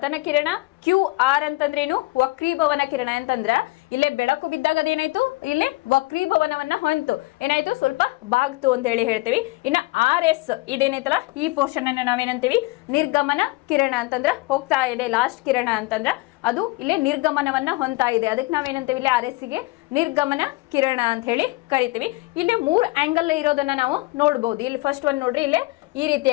ಕಿರಣ, ಕ್ಯೂ ಆರ್ ಅಂತಂದ್ರೇನು ವಕ್ರೀಭವನ ಕಿರಣ. ಅಂತಂದ್ರ ಇಲ್ಲೇ ಬೆಳಕು ಬಿದ್ದಾಗ ಅದೇನಾಯ್ತು, ಇಲ್ಲಿ ವಕ್ರೀಭವನವನ್ನ ಹೊಂತು ಏನಾಯ್ತು, ಸ್ವಲ್ಪ ಬಾಗ್ತು ಅಂತ ಹೇಳಿ ಹೇಳ್ತೀವಿ. ಇನ್ನು ಆರ್ ಎಸ್ ಇದೇನೈತಲ್ಲ, ಈ ಪೋರ್ಷನ್ ಅನ್ನ ನಾವೇನಂತೀವಿ, ನಿರ್ಗಮನ ಕಿರಣ ಅಂತಂದ್ರ ಹೋಗ್ತಾ ಇದೆ. ಲಾಸ್ಟ್ ಕಿರಣ ಅಂತಂದ್ರ ಅದು ಇಲ್ಲಿ ನಿರ್ಗಮನವನ್ನ ಹೊಂತಾ ಇದೆ, ಅದಕ್ಕೆ ನಾವೇನಂತೀವಿ, ಇಲ್ಲಿ ಆರ್ ಎಸ್ ಗೆ ನಿರ್ಗಮನ ಕಿರಣ ಅಂತ ಹೇಳಿ ಕರಿತೀವಿ. ಇಲ್ಲಿ 3 ಆಂಗಲ್ ಇರೋದನ್ನ ನಾವು ನೋಡ್ಬೋದು. ಇಲ್ಲಿ ಫಸ್ಟ್ ಒಂದು ನೋಡ್ರಿ, ಇಲ್ಲೇ ಈ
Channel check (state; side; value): quieter; right; 22.1 dB